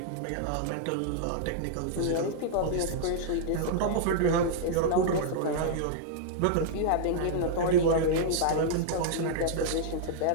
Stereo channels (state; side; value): different; both; correlation -0.02